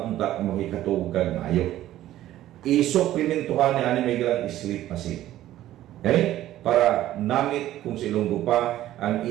unta ang makikatug kag maayo. I-supplementuhan ni ani may galang sleep pasil. Okay? Para namit kung silunggo pa ang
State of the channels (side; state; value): left; quieter; 13.7 dB